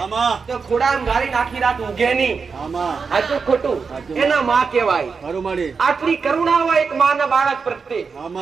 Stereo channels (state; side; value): quieter; left; 5.2 dB